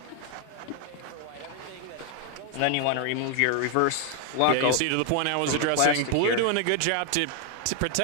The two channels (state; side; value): different; both; correlation 0.00